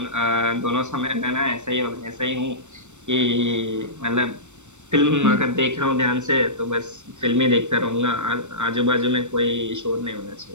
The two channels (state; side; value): late; left; 0.84 ms